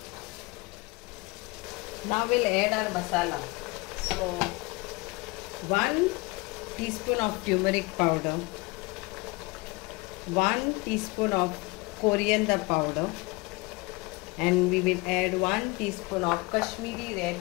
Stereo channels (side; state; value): right; quieter; 25.0 dB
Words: Now we'll add our masala. So 1 teaspoon of turmeric powder, 1 teaspoon of coriander powder, and we will add 1 teaspoon of Kashmiri